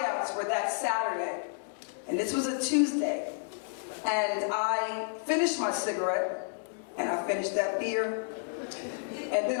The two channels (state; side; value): silent; right; digital silence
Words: were that Saturday, and this was a Tuesday. And I finished my cigarette, and I finished that beer, and then